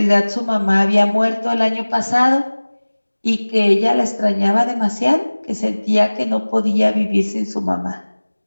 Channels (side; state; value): both; inverted; correlation -1.00